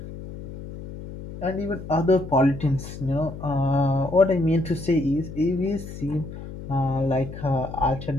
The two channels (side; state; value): left; noise; hum, 11 dB below the sound